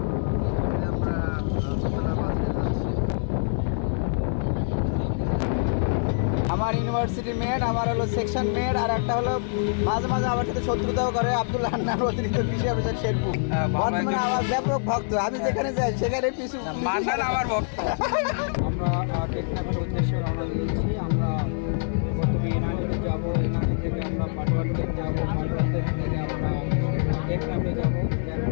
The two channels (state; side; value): silent; right; digital silence